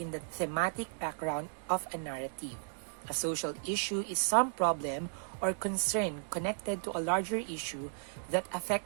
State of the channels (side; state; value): left; silent; digital silence